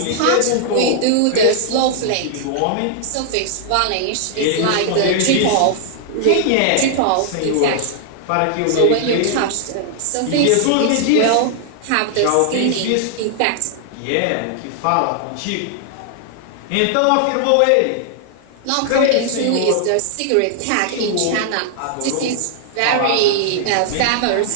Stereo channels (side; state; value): both; different; correlation 0.00